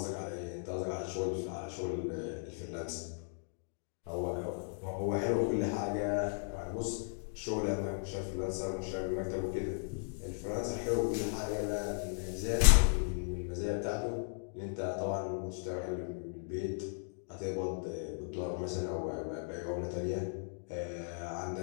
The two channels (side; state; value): right; silent; digital silence